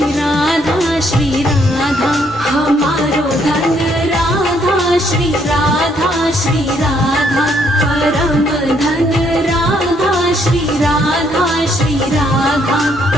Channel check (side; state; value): both; normal; correlation 0.70